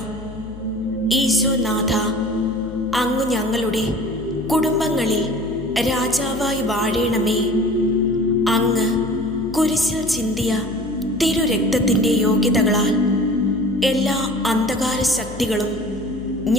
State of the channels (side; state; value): left; noise; hum, 15 dB below the sound